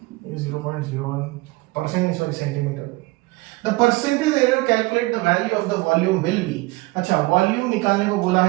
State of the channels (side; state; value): left; quieter; 22.6 dB